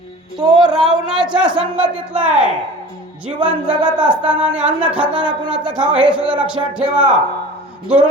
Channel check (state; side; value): normal; both; correlation 0.39